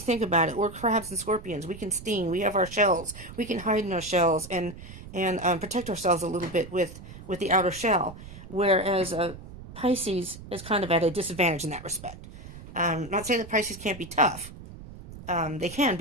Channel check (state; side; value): noise; right; rumble, 15 dB below the sound